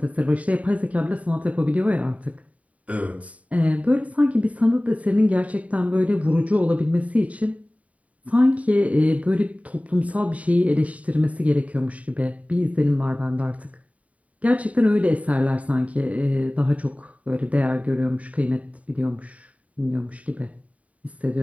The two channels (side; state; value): left; late; 0.068 ms